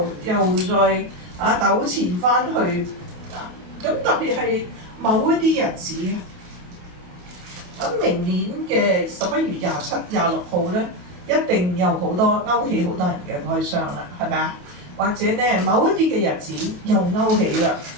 又再糾纏翻去。咁特別係某一啲日子，咁明年嘅11月27、26號咧，一定有好多勾起好多人嘅哀傷啦，係咪啊？或者咧某一啲嘅日子又勾起啦，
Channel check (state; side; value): late; left; 28 ms